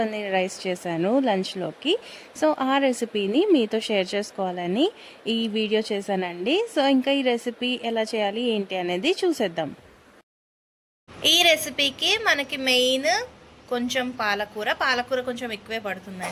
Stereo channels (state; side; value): identical; both; correlation 1.00